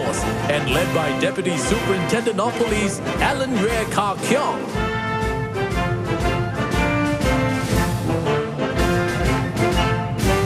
and led by Deputy Superintendent of Police Alan Yue Ka Kiong.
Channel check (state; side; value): identical; both; correlation 1.00